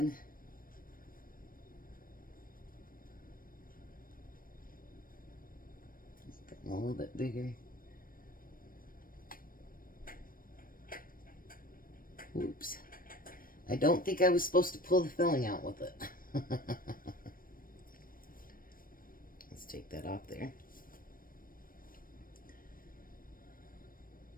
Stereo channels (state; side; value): late; right; 0.41 ms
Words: Getting a little bit bigger. Oops. I don't think I was supposed to pull the filling out with it. Let's take that off there.